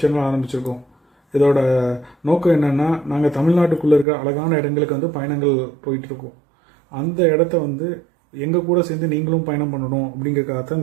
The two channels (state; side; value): drops out; left; at 4.0 s